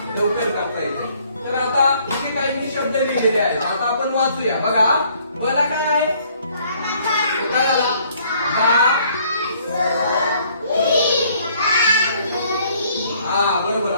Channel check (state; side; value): inverted; both; correlation -0.63